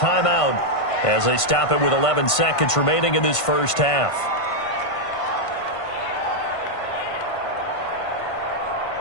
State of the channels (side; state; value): right; late; 1.5 ms